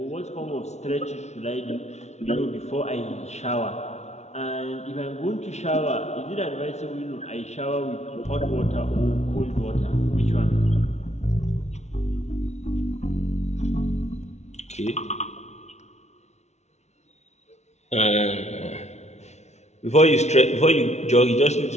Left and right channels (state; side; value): late; right; 0.32 ms